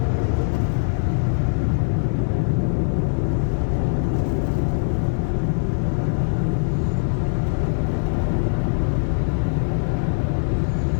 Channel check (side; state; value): right; silent; digital silence